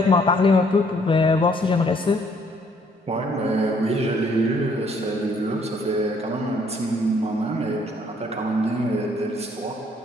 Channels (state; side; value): normal; both; correlation 0.65